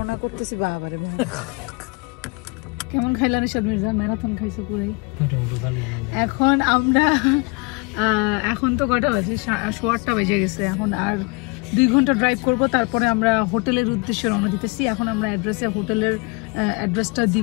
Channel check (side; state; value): right; quieter; 29.8 dB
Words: করতেছি। বাবারে কেমন খাইলা রিশাদ মির্জা? ম্যারাথন খাইছো পুরাই। এখন আমরা এখন তো কটা বাজে, 8:15 বেজে গেছে। এখন আর 2 ঘন্টা ড্রাইভ করব, তারপরে আমরা হোটেলের উদ্দেশ্যে রওনা দিতেছি। এখন আমরা হোটেলের অ্যাড্রেসটা